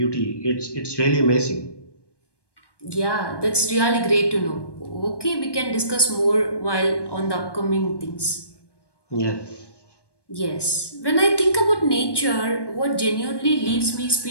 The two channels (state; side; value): late; right; 1.2 ms